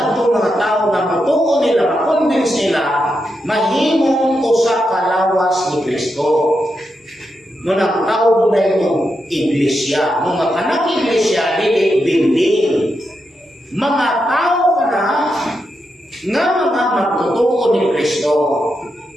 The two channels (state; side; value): normal; both; correlation 0.85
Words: mga tao na mutuo nila, makonvince nila, mahimong usa ka lawas ni Kristo. Ngunang tao na itong iglesia. Mga kanang iglesia, hindi building. Mga tao ka na nga mga magtutuo ni Kristo.